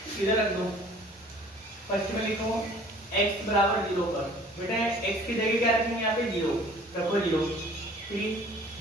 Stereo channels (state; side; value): normal; both; correlation 0.51